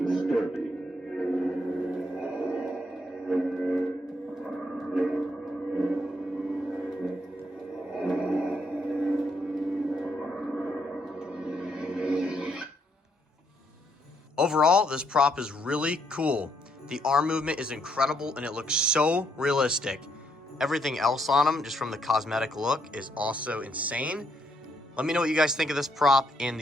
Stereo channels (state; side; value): normal; both; correlation 0.74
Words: disturbing. Overall, this prop is really cool. The arm movement is incredible and it looks so realistic. Everything else on him, just from the cosmetic look, is also insane. Let me know what you guys think of this prop in